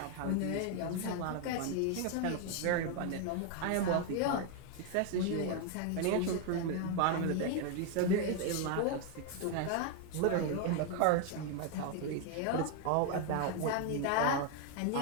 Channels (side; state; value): both; different; correlation 0.01